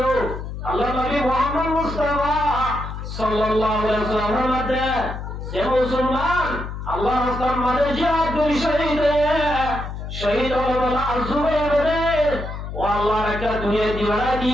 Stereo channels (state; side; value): noise; left; hum, 7 dB below the sound